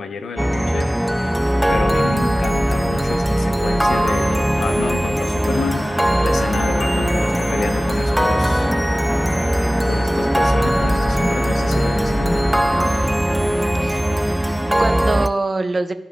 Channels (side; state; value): both; normal; correlation 0.97